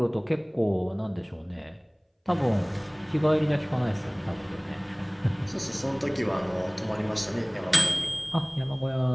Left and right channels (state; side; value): identical; both; correlation 1.00